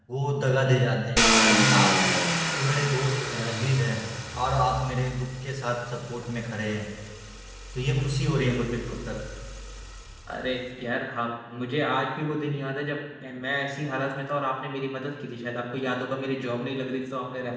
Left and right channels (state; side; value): identical; both; correlation 1.00